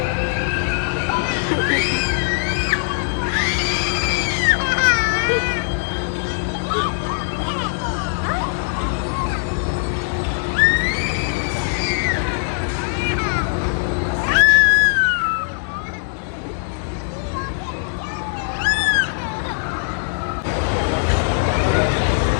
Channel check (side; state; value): right; silent; digital silence